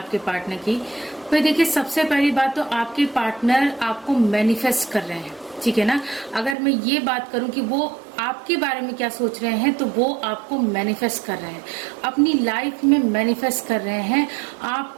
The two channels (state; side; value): drops out; left; at 6.6 s